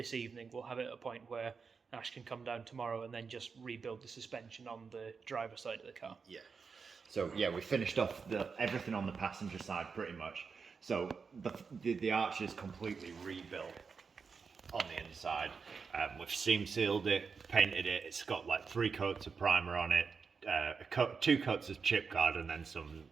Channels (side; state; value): left; quieter; 5.4 dB